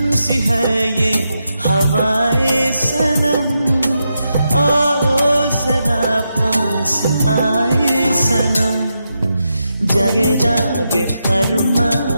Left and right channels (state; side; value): inverted; both; correlation -0.85